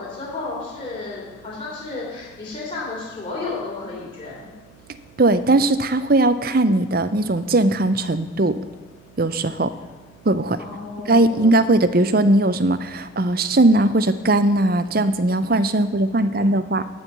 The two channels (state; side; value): noise; right; hum, 29 dB below the sound